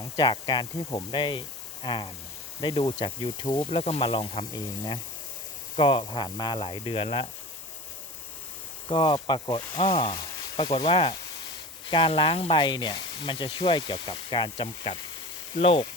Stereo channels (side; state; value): both; normal; correlation 0.34